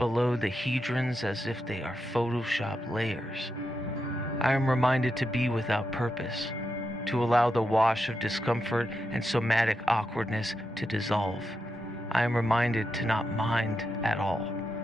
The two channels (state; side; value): normal; both; correlation 0.86